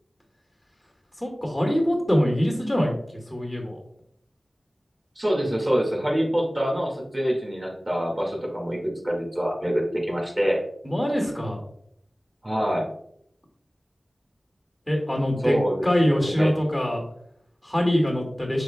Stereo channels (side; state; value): both; normal; correlation 0.98